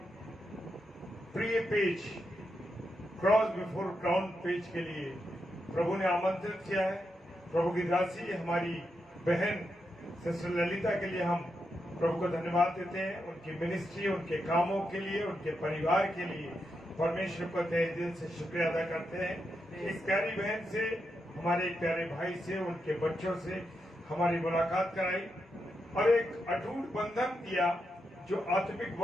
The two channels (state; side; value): normal; both; correlation 0.85